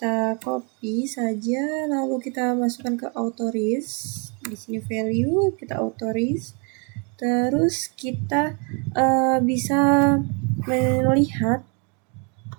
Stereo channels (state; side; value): quieter; left; 35.2 dB